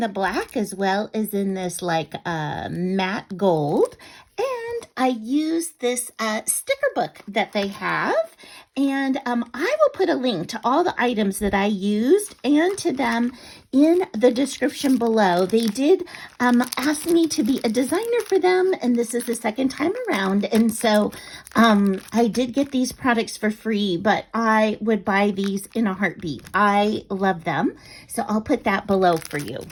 black as well as in this like matte gold. And I used this sticker book that they have. And I will put a link to all the items that I used and to them in the description below. They did ask me to be a designer for them, and this is the second time around. And so I did get these products for free, but I would buy these in a heartbeat. I love them. So I'll put that below for you.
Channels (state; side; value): identical; both; correlation 1.00